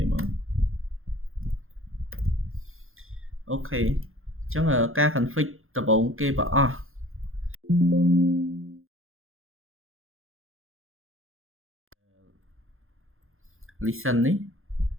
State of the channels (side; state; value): left; late; 0.60 ms